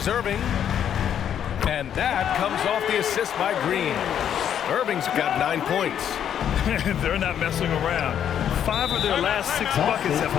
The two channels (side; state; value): right; quieter; 9.3 dB